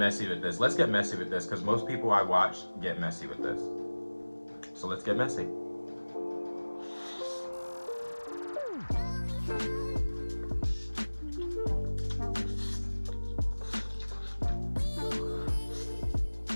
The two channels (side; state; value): both; inverted; correlation -1.00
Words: with this. Let's get messy with this, because most people I watch get messy with this. So let's get messy.